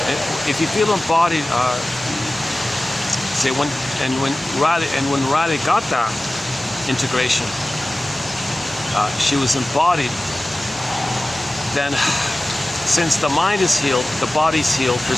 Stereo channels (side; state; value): both; normal; correlation 0.96